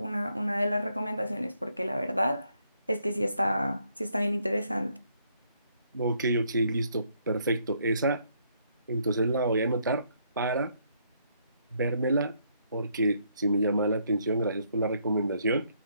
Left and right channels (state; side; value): inverted; both; correlation -0.71